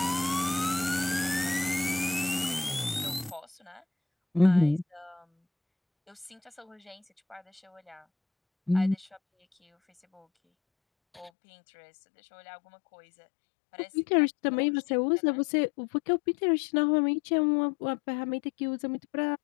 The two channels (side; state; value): right; drops out; at 11.3 s